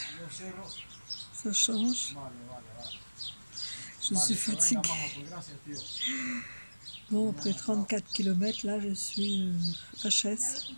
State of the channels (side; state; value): both; inverted; correlation -1.00